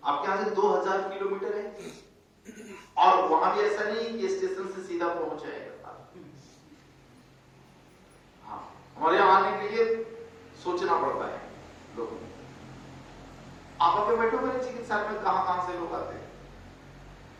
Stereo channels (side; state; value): both; identical; correlation 1.00